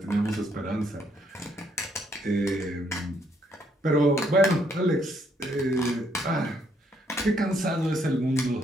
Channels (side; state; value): both; normal; correlation 0.71